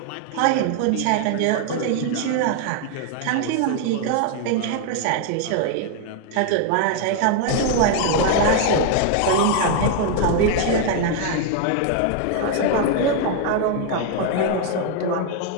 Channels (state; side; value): different; both; correlation 0.00